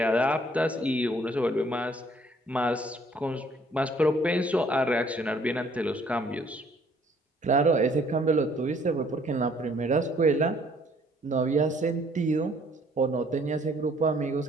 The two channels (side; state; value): both; normal; correlation 0.61